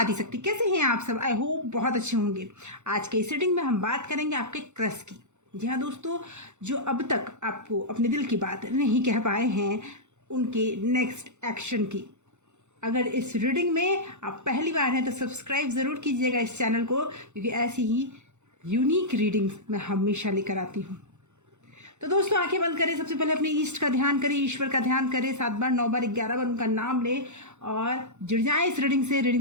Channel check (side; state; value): left; late; 0.83 ms